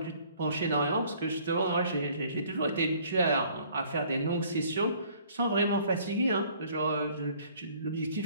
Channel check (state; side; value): inverted; both; correlation -0.57